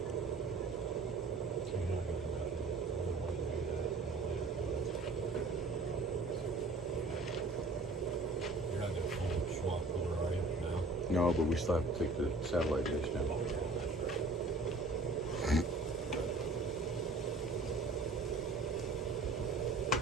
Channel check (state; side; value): quieter; left; 3.0 dB